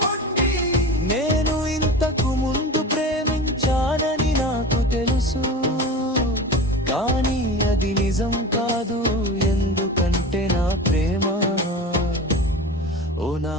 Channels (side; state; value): both; normal; correlation 0.32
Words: నేను ఇంతకు ముందు ప్రేమించానని నాకు తెలుసు, కానీ అది నిజం కాదు. ఎందుకంటే నా ప్రేమ, ఓ నా